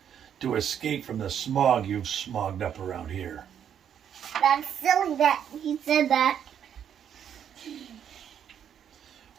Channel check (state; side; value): quieter; left; 8.9 dB